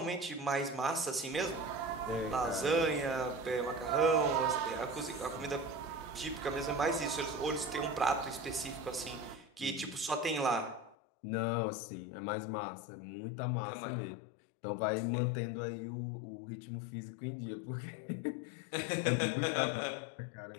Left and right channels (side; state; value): right; drops out; at 11.0 s